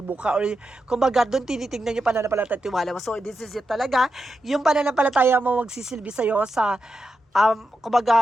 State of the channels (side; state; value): both; normal; correlation 0.88